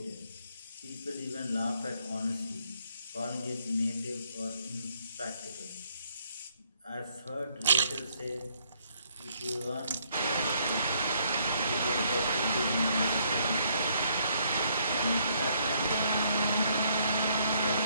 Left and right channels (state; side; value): inverted; both; correlation -0.69